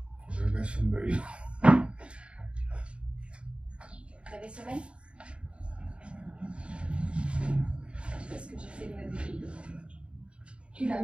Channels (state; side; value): late; left; 0.057 ms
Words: Je laisse une belle. Vous avez sommeil? Je sais pas ce que j'ai fait de ma vie. Tu l'as